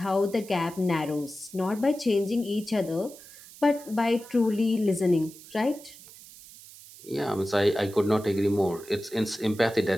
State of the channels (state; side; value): noise; right; hiss, 19 dB below the sound